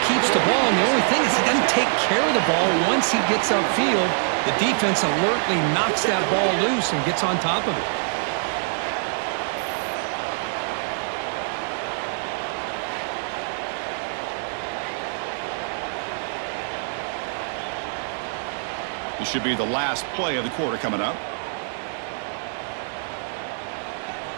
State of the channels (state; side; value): silent; left; 62 dB below the other